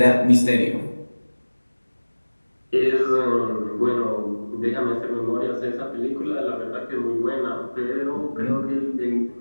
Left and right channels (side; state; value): both; inverted; correlation -1.00